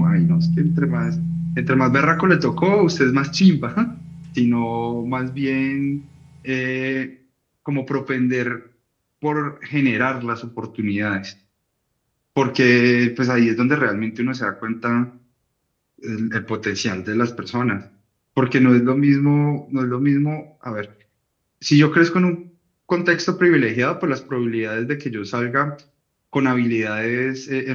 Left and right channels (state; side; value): identical; both; correlation 1.00